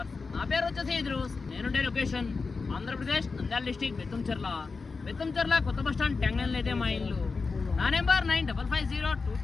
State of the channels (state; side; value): quieter; right; 4.4 dB